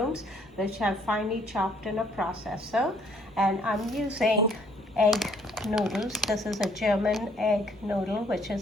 which I've finely chopped in a processor. And I'm using egg noodles. This is a German egg noodle, which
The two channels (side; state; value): both; normal; correlation 0.64